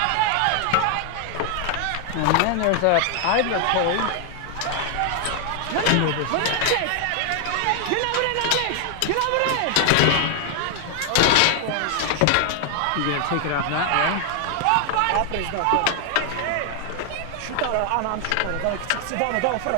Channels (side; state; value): both; different; correlation 0.00